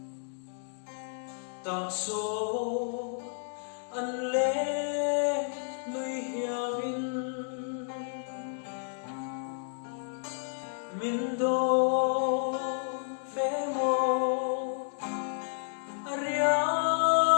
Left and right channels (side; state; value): right; silent; digital silence